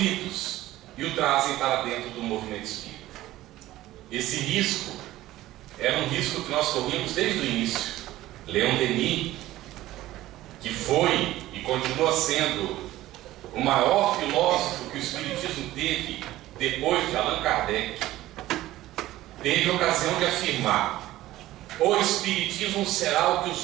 e o trazem para dentro do movimento espírita. Esse risco era um risco que nós corríamos desde o início. Leon Denis, que foi e continua sendo o maior filósofo que o Espiritismo teve depois de Allan Kardec, teve a ocasião de afirmar: o Espiritismo será o que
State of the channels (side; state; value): left; quieter; 15.7 dB